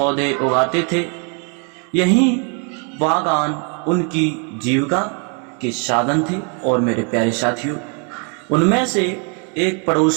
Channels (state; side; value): quieter; left; 38.1 dB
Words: उगाते थे। यही बागान उनकी जीविका के साधन थे। और मेरे प्यारे साथियों, उनमें से एक